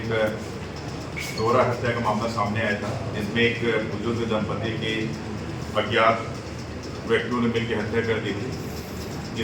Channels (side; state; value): both; identical; correlation 1.00